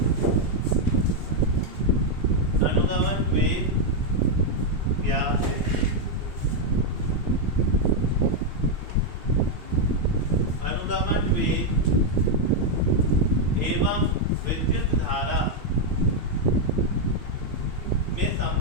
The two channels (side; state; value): left; late; 2.7 ms